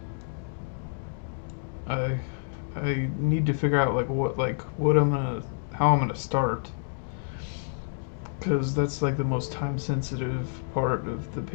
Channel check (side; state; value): right; silent; digital silence